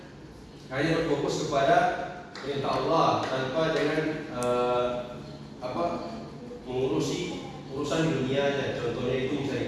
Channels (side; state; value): both; identical; correlation 1.00